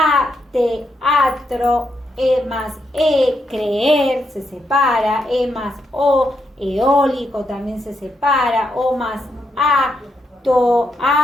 teatro, E más E, creer, se separa, E más O, eólico también se separa, O más A,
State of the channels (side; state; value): both; normal; correlation 0.80